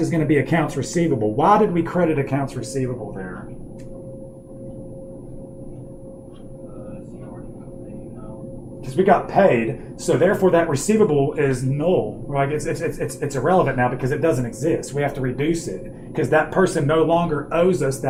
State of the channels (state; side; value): identical; both; correlation 1.00